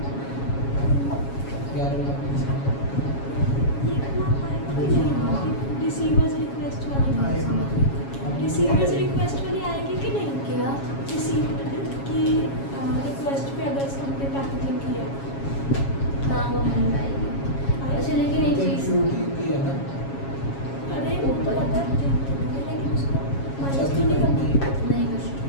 11 लाख रिसीवर्स रिक्वेस्ट वाली रिसीवर्स रिक्वेस्ट वाली आएगी कि नहीं? क्या? रिसीव्ड की रिक्वेस्ट पे अगर हमने पैकेजिंग किया हाँ वो मिल पाएगी। अच्छा लेकिन एक चीज़, की है ना अरे वो तो पता है, लेकिन उसको माइनस तो नहीं करना। नहीं कुछ।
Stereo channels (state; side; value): late; right; 7.3 ms